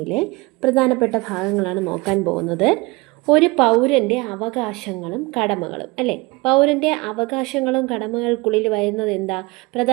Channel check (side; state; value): left; quieter; 24.1 dB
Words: പ്രധാനപ്പെട്ട ഭാഗങ്ങളാണ് നോക്കാൻ പോകുന്നത്. ഒരു പൗരൻ്റെ അവകാശങ്ങളും കടമകളും അല്ലേ, പൗരൻ്റെ അവകാശങ്ങളും കടമകൾക്കുള്ളിൽ വരുന്നത് എന്താ?